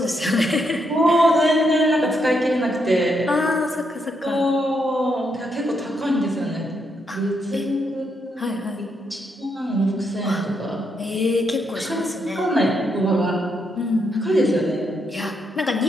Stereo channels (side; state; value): both; normal; correlation 0.79